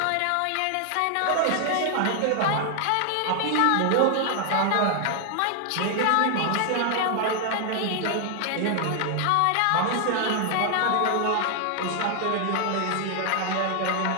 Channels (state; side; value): different; both; correlation 0.00